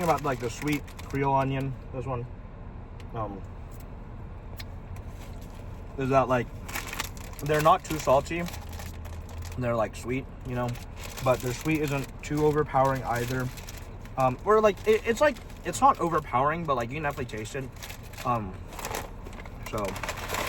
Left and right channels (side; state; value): both; identical; correlation 1.00